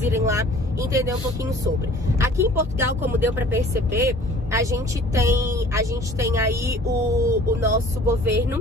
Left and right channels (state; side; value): normal; both; correlation 0.49